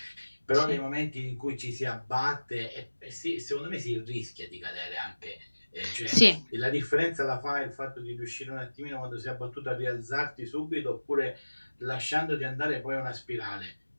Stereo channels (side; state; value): both; inverted; correlation -1.00